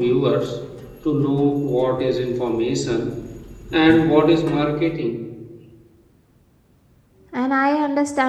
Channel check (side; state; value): both; identical; correlation 1.00